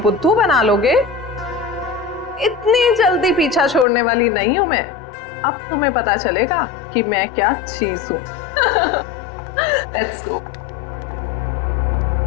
बुद्धू बना लोगे? इतनी जल्दी पीछा छोड़ने वाली नहीं हूं मैं। अब तुम्हें पता चलेगा कि मैं क्या चीज हूं। Let's go.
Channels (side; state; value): right; drops out; at 3.9 s